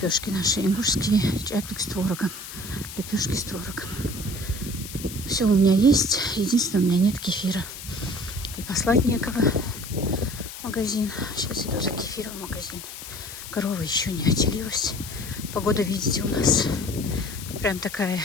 наши, и мужские, чапик с творогом, лепешки с творогом. Все у меня есть, единственное, у меня нет кефира. И послать некого в магазин. Сейчас иду за кефиром в магазин. Корова еще не отелилась. Погода, видите, у нас прям такая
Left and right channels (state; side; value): noise; left; hiss, 11 dB below the sound